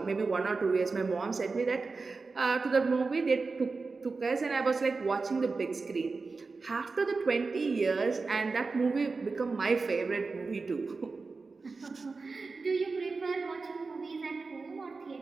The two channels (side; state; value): left; quieter; 4.1 dB